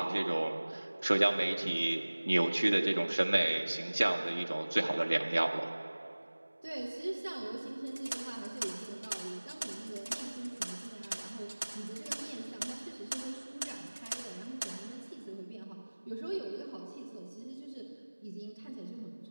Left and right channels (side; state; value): both; inverted; correlation -1.00